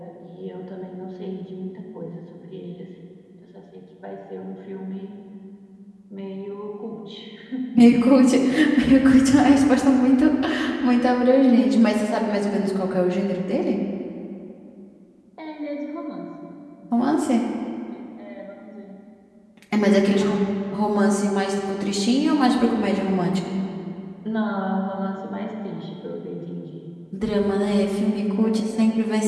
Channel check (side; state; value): both; identical; correlation 1.00